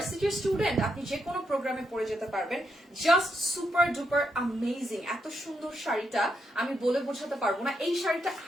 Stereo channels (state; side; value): normal; both; correlation 0.80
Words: স্টুডেন্ট, আপনি যে কোনো প্রোগ্রামে পড়ে যেতে পারবেন। Just super duper amazing. এত সুন্দর শাড়িটা আমি বলে বোঝাতে পারবো না। এই শাড়িটা